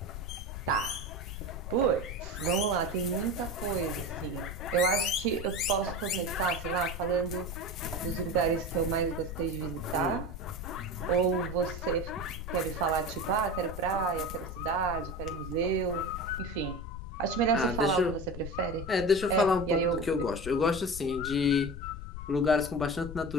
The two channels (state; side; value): noise; left; rumble, 9 dB below the sound